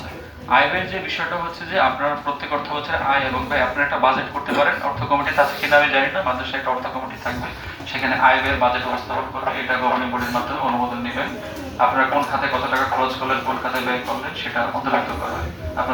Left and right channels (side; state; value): both; identical; correlation 1.00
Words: আয় ব্যয়ের যে বিষয়টা হচ্ছে যে আপনার প্রত্যেক অর্থ বছরে আয় এবং ব্যয় আপনারা একটা বাজেট করতে পারেন। অর্থ কমিটি আছে কিনা আমি জানি না, মাদ্রাসায় একটা অর্থ কমিটি থাকবে, সেখানে আয় ব্যয়ের বাজেট উপস্থাপন করবে। এটা গভর্নিং বডির মাধ্যমে অনুমোদন নেবেন। আপনারা কোন খাতে কত টাকা খরচ করলেন, কোন খাতে ব্যয় করলেন, সেটা অন্তর্ভুক্ত করা হয়।